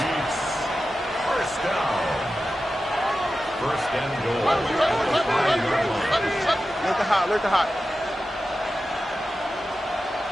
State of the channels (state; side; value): normal; both; correlation 0.93